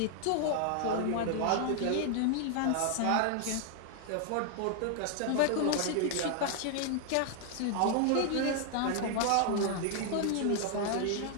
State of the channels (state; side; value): different; both; correlation 0.00